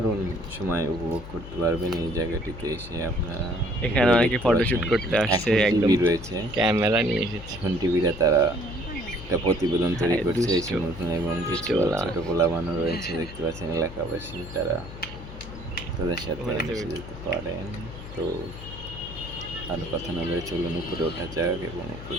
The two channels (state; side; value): noise; left; hum, 13 dB below the sound